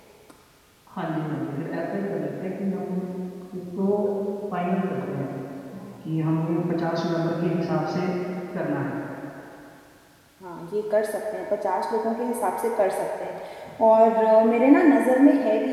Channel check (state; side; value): identical; both; correlation 1.00